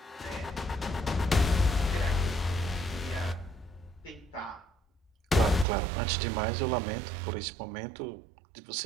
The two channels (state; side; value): drops out; left; at 5.7 s